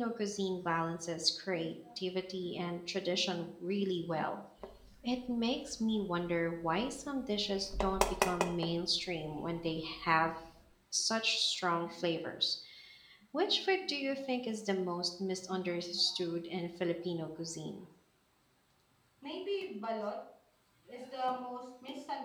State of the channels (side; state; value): both; identical; correlation 1.00